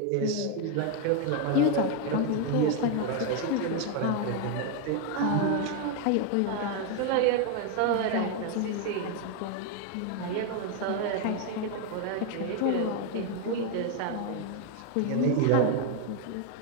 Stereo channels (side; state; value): both; different; correlation 0.01